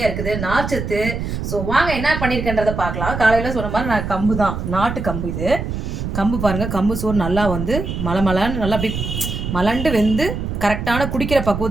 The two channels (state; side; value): noise; right; rumble, 4 dB below the sound